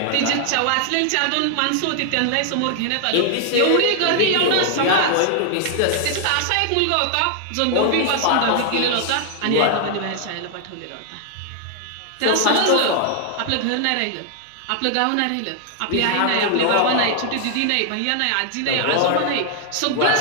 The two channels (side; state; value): both; different; correlation 0.00